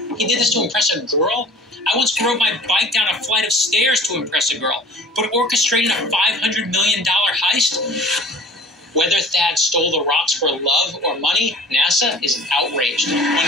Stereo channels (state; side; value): normal; both; correlation 0.42